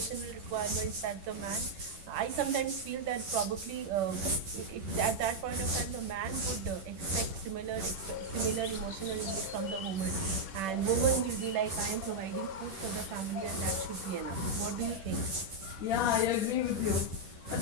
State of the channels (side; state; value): left; late; 11 ms